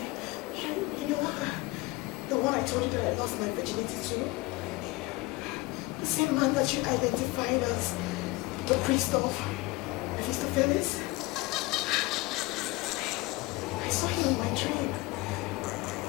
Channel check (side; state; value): right; quieter; 22.3 dB